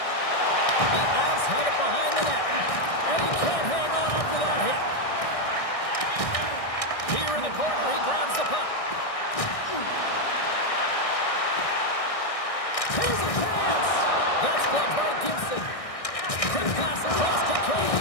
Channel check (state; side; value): late; right; 1.6 ms